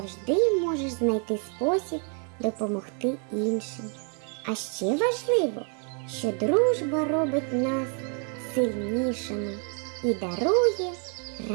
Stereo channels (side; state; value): left; quieter; 39.2 dB